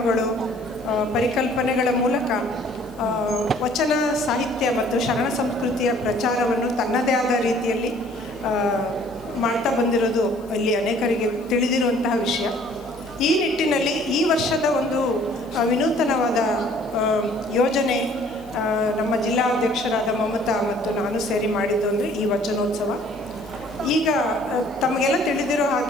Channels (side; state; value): left; noise; hiss, 28 dB below the sound